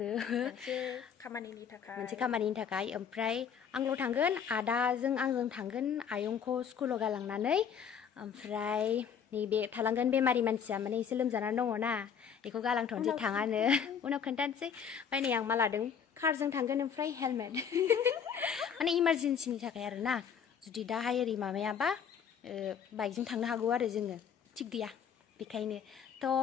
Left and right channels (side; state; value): right; quieter; 7.5 dB